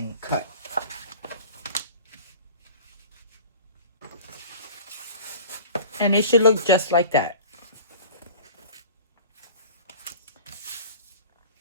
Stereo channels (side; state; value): both; inverted; correlation -0.41